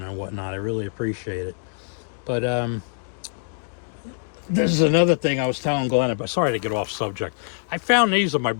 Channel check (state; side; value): silent; right; digital silence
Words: and whatnot. I really appreciate it. But This is another thing I was telling Glenn about. Sorry to get off subject. I found these of my